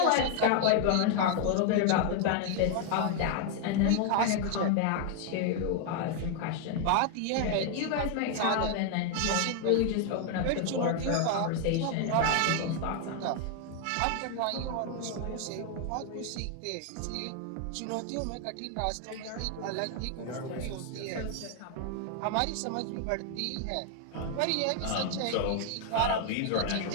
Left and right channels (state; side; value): different; both; correlation 0.00